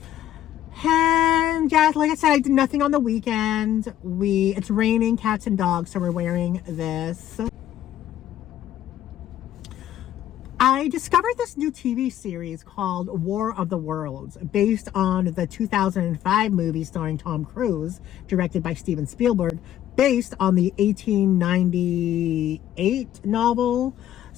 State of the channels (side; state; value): right; quieter; 11.9 dB